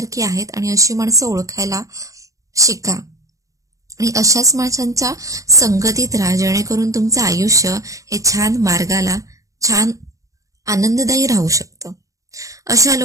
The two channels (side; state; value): left; late; 0.16 ms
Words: आहेत आणि अशी माणसं ओळखायला शिका आणि अशाच माणसांच्या संगतीत राहा, जेणेकरून तुमचं आयुष्य हे छान मार्गाला, छान आनंददायी राहू शकतं. अशा